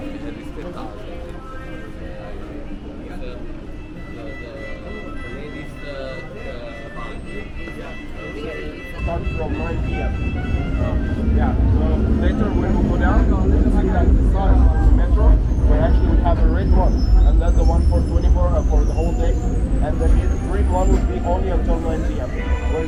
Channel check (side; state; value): both; identical; correlation 1.00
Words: rispettare ladies Start from 9 p.m. Yeah, so later when we go down, you see that the sign on the metro, we actually have a red one, and that's the one for 24 for the whole day, and the green one will be only until 9 p.m.